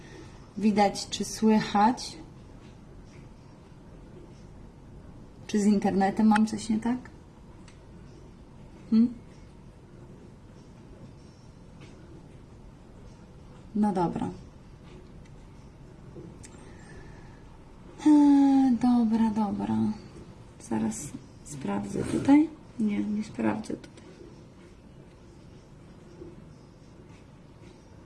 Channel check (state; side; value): identical; both; correlation 1.00